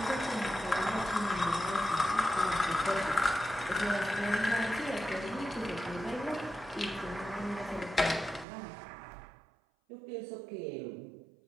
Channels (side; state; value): left; drops out; at 8.5 s